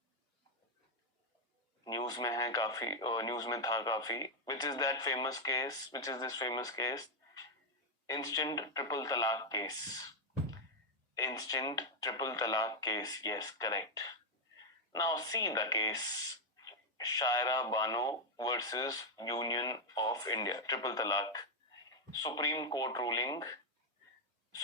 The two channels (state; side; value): normal; both; correlation 0.01